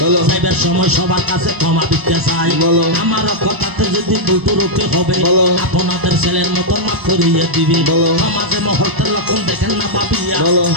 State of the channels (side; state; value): left; late; 1.0 ms